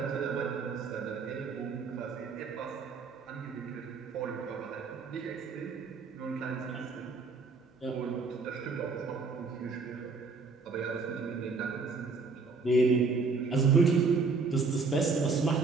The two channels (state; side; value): quieter; left; 4.4 dB